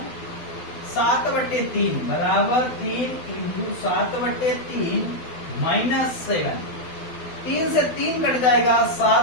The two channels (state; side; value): late; right; 12 ms